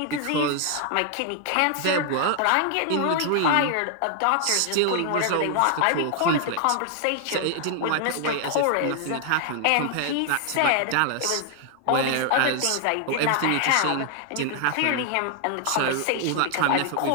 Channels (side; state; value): both; different; correlation 0.00